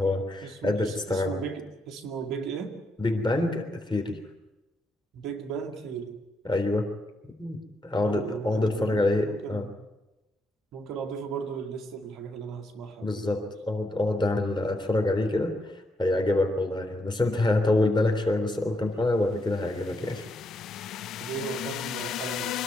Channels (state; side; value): normal; both; correlation 0.78